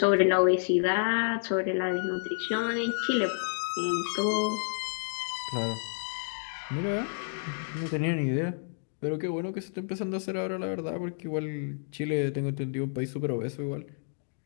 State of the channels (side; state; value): right; silent; digital silence